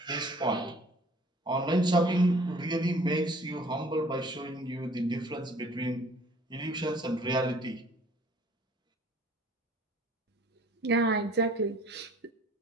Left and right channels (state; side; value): normal; both; correlation 0.53